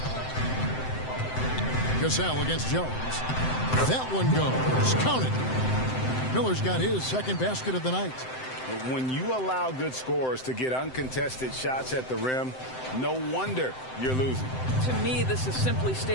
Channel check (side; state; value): right; late; 7.8 ms